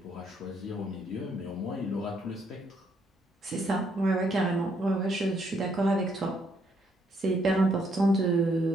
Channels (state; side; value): normal; both; correlation 0.71